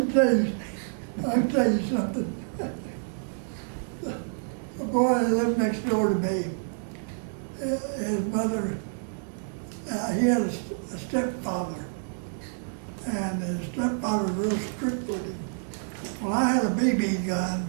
tell you something. A boy that lived next door to me, his mother, he had a stepfather, and his stepfather was real strict with him. Well, I had a BB gun.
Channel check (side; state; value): left; silent; digital silence